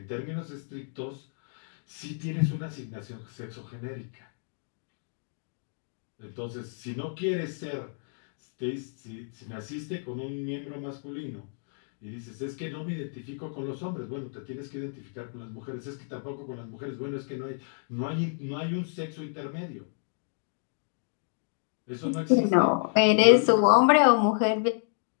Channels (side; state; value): right; silent; digital silence